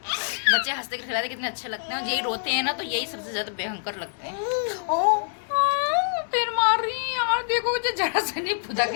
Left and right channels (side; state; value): right; silent; digital silence